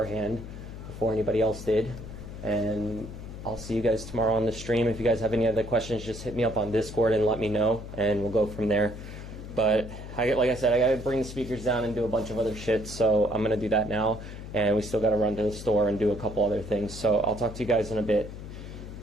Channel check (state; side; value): noise; left; hum, 11 dB below the sound